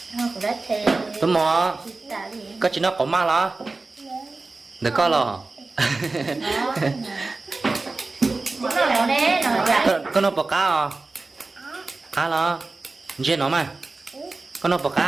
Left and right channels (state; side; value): quieter; left; 3.5 dB